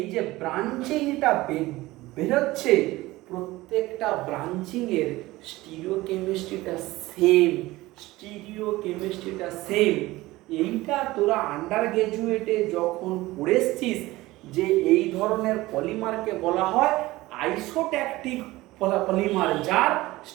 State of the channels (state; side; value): quieter; left; 18.8 dB